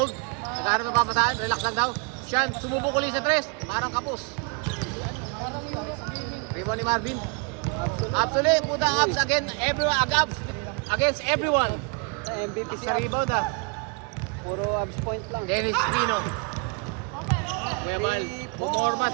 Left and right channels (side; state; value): left; quieter; 32.9 dB